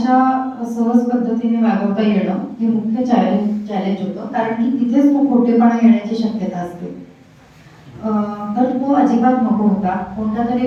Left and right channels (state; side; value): identical; both; correlation 1.00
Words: सहज पद्धतीने वागवता येणं हे मुख्य चॅलेंज होतं, कारण की तिथेच तो खोटेपणा येण्याची शक्यता असते. तर तो अजिबात नको होता. कोणता तरी